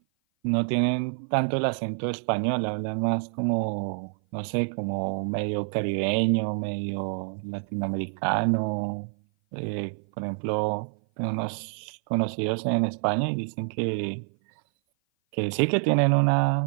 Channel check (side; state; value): left; silent; 56 dB below the other